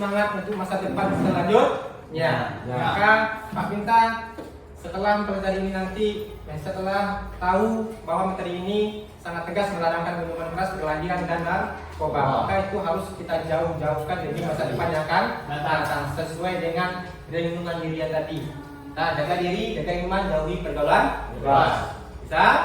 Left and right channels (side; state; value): both; identical; correlation 1.00